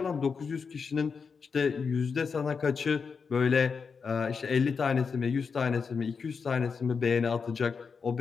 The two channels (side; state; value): right; quieter; 5.5 dB